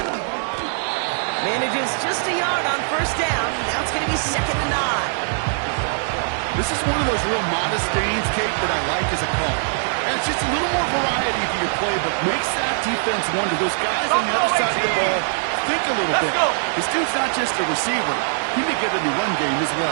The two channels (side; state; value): left; silent; digital silence